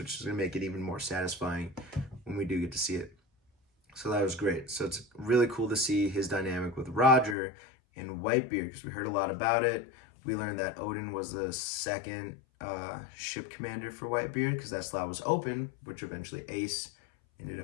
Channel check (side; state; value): right; drops out; at 7.4 s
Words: is going to make it even more satisfying when we do get to see it. So that was great. So it's really cool to see his dynamic with Roger and Whitebeard, because we heard a lot about it. We learned that Odin was the second ship commander for Whitebeard, because that slot was open, which eventually Ace ended